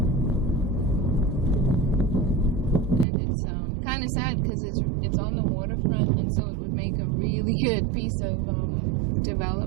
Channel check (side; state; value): left; drops out; at 3.1 s